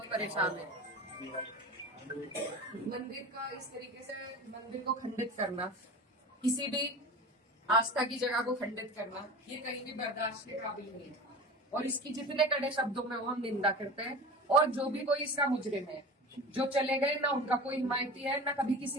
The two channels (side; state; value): both; normal; correlation 0.33